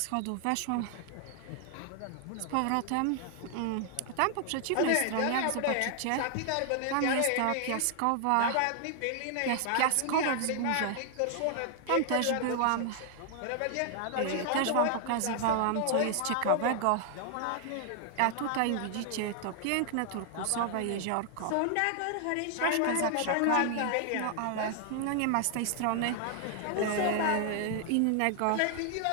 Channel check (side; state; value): both; different; correlation 0.00